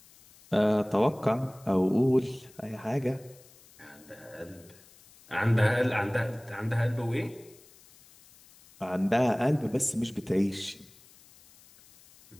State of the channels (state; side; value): noise; left; hiss, 25 dB below the sound